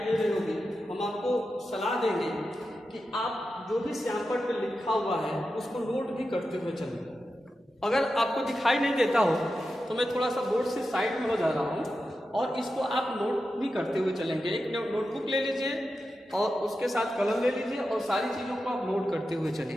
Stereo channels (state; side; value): normal; both; correlation 0.90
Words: दे रही होगी। हम आपको सलाह देंगे कि आप जो भी सैंपल पे लिखा हुआ है उसको नोट भी करते हुए चलें। अगर आपको दिखाई नहीं देता हो तो मैं थोड़ा सा बोर्ड से साइड में हो जा रहा हूँ और इसको आप नोट भी करते हुए चलेंगे। एक नोटबुक ले लीजिए और उसके साथ कलम ले लीजिए और सारी चीज़ों को आप नोट करते हुए